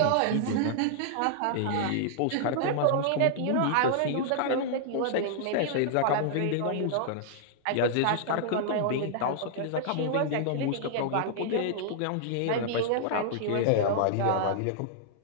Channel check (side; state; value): both; different; correlation -0.01